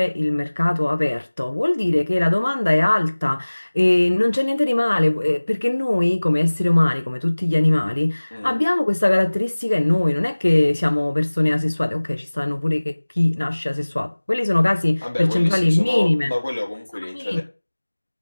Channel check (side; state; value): both; inverted; correlation -1.00